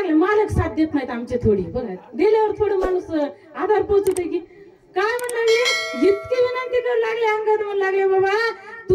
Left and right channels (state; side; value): identical; both; correlation 1.00